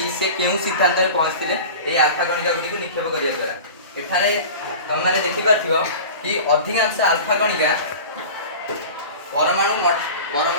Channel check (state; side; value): inverted; both; correlation -0.36